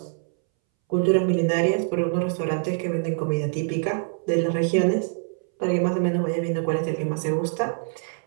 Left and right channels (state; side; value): silent; left; 62 dB below the other